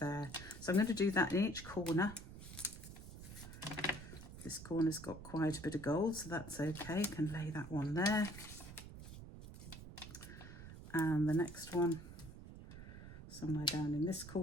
there. So I'm going to do that in each corner. This corner's got quite a bit of gold, so that's okay. I can lay that one there. And the next one somewhere down in this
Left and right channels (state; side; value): noise; right; rumble, 13 dB below the sound